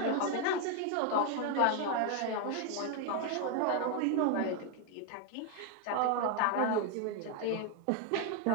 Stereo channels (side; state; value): both; different; correlation 0.01